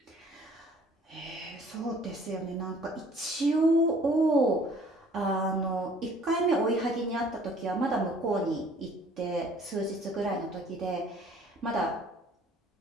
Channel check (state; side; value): normal; both; correlation 0.55